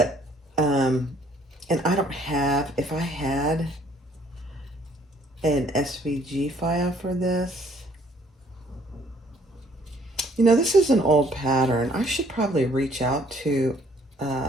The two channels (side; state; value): both; normal; correlation 0.62